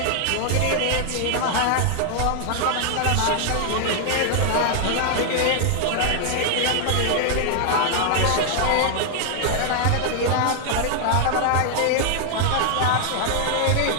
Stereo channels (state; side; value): different; both; correlation 0.00